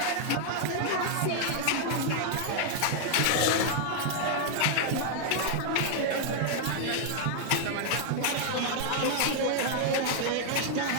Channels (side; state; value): both; different; correlation 0.00